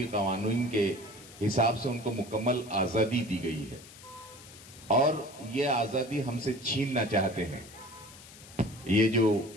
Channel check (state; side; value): noise; left; hiss, 19 dB below the sound